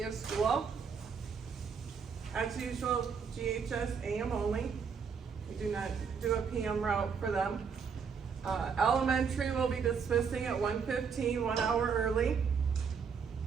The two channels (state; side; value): quieter; left; 6.2 dB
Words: of school. As usual, GHS AM only. We do not do a PM route for them. Elementary will be dismissing at 1:15, 1 hour early.